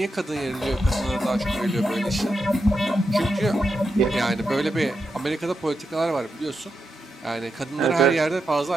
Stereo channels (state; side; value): normal; both; correlation 0.86